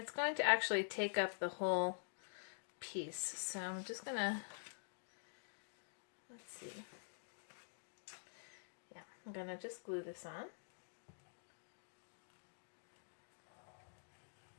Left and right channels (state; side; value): silent; right; digital silence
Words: going to actually take up the whole piece. So I'm just going to, let's see. Yeah, I'm going to just glue this on.